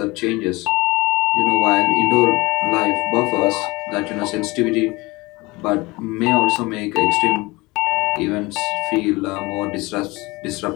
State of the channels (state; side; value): quieter; right; 22.7 dB